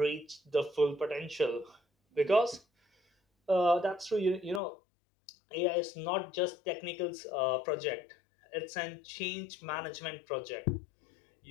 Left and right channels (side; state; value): right; drops out; at 4.6 s